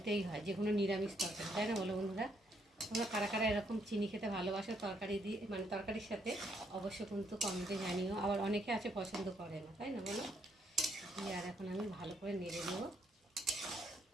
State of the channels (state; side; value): normal; both; correlation 0.72